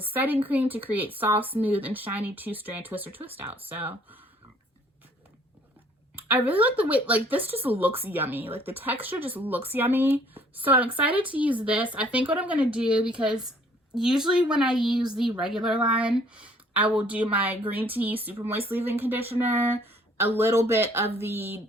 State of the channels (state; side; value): normal; both; correlation 0.59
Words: setting cream to create soft, smooth, and shiny 2-strand twist or twist out. So I really like the way, like this just looks yummy. Like the texture just looks yummy. So I'm excited to use this. I think what I'm going to do, because usually when I use the regular line, I will do my green tea super moist leave-in conditioner, a little bit of the